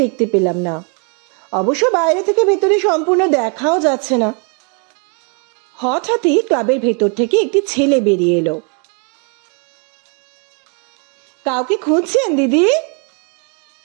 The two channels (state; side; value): quieter; left; 37.2 dB